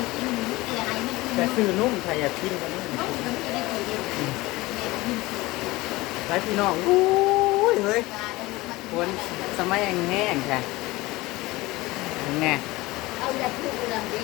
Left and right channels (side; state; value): right; quieter; 20.5 dB